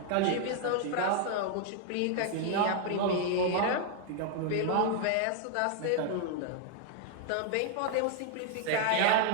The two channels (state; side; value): different; both; correlation 0.00